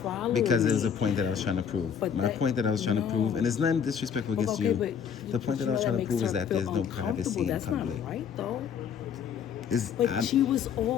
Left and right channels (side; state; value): right; quieter; 7.5 dB